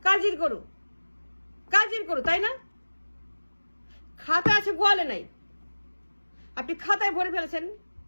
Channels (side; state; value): both; inverted; correlation -1.00